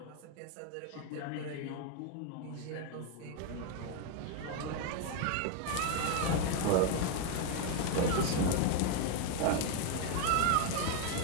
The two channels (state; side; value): different; both; correlation 0.01